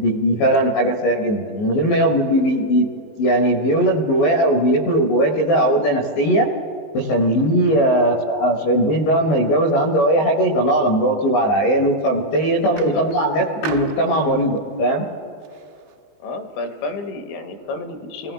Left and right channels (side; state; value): right; late; 19 ms